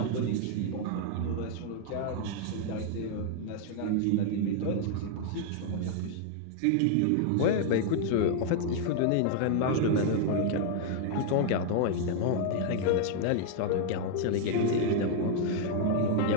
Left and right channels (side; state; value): both; different; correlation 0.00